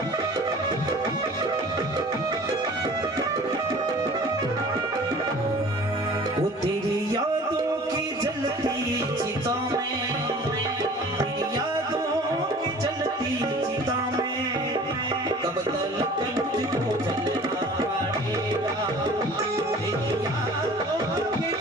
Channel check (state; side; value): normal; both; correlation 0.46